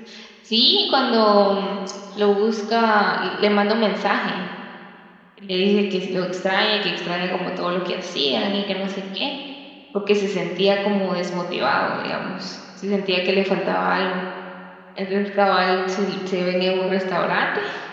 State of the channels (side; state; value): both; identical; correlation 1.00